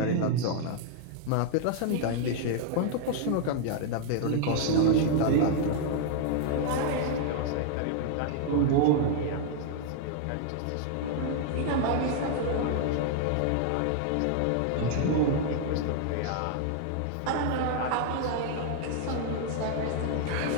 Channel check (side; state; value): both; different; correlation 0.00